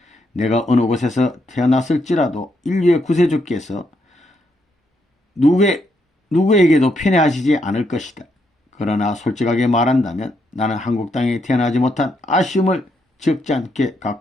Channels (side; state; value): both; normal; correlation 0.77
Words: 내가 어느 곳에서 태어났을지라도 인류의 구세주께서 누구에게도 편애하시지 않을 것이다. 그러나 솔직하게 말한다면 나는 한국 땅에 태어나지 못한 아쉬움을 적지 않게